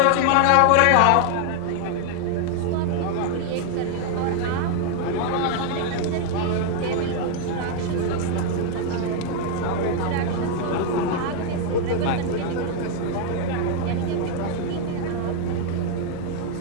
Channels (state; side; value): different; both; correlation 0.00